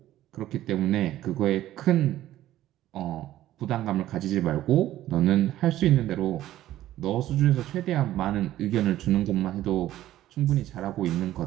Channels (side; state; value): left; quieter; 13.8 dB